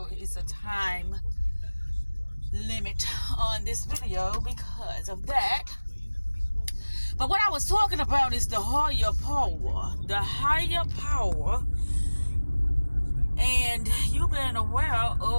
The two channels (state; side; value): inverted; both; correlation -1.00